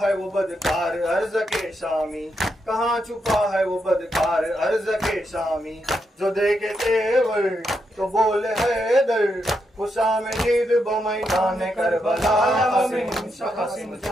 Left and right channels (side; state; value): both; normal; correlation 0.82